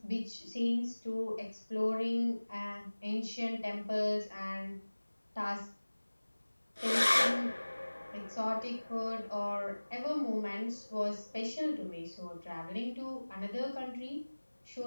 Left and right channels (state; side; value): inverted; both; correlation -1.00